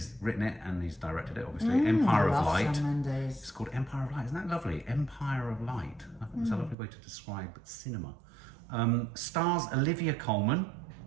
written it and he's directed it, obviously. Empire of Light. Sam Mendes. It's called Empire of Light. Isn't that lovely? Empire of Light. I think it's a lovely way to describe cinema. Stars Olivia Colman.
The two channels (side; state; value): left; drops out; at 6.8 s